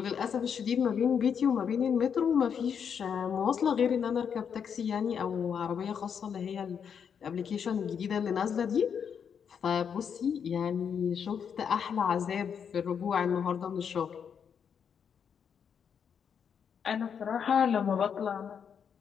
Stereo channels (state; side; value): quieter; right; 7.3 dB